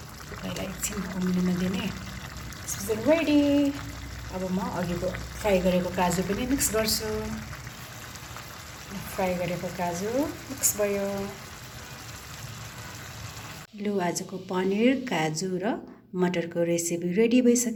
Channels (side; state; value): both; identical; correlation 1.00